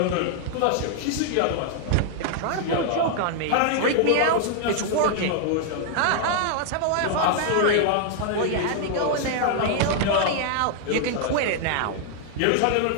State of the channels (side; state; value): both; different; correlation 0.00